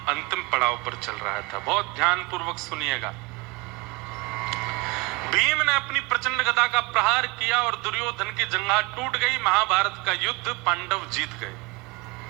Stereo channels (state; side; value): quieter; left; 25.1 dB